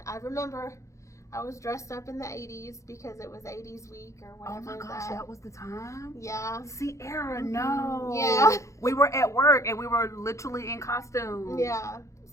I remember I was dressed up in the 80s because it was 80s week or whatever. Oh my gosh, that was the time? Yeah. Sierra, no. Yeah. We were at work and we were literally in costume. Yeah.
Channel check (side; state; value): right; late; 0.15 ms